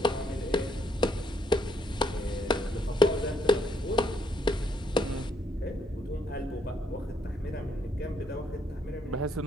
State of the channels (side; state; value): both; normal; correlation 0.71